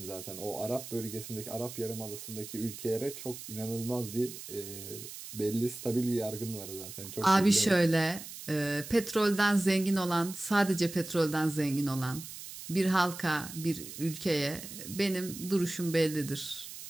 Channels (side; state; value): right; noise; hiss, 12 dB below the sound